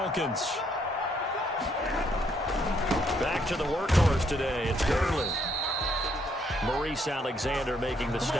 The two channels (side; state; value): both; normal; correlation 0.71